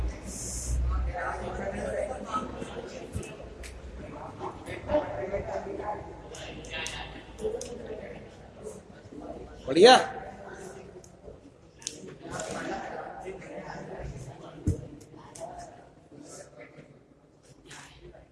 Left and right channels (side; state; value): both; identical; correlation 1.00